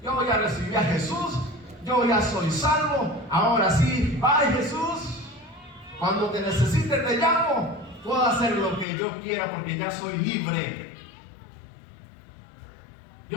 Yo ya recibí a Jesús, yo ya soy salvo, ahora sí, bye Jesús. Cuando te necesite te llamo, puedo hacer lo que yo quiera porque ya soy libre.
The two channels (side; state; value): right; drops out; at 8.8 s